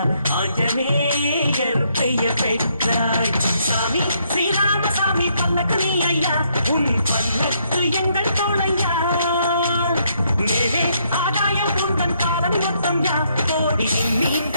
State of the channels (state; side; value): inverted; both; correlation -0.72